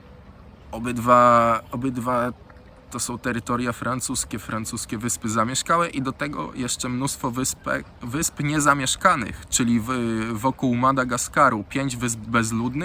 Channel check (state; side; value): identical; both; correlation 1.00